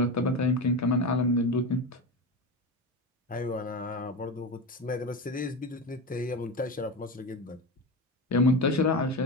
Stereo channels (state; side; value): normal; both; correlation 0.21